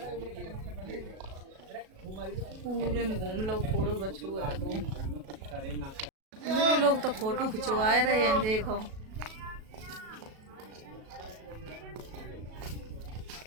पूरे में घूम लो फोड़ो बछू है वो। मेरे लोग तो फोटो खिंचवा रहे हैं, देखो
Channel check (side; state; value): left; late; 37 ms